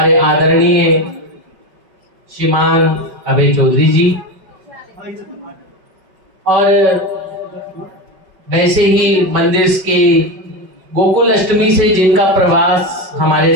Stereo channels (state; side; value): late; left; 5.3 ms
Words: आदरणीय श्रीमान अभय चौधरी जी, और वैसे ही मंदिर के गोकुल अष्टमी से जिनका प्रवास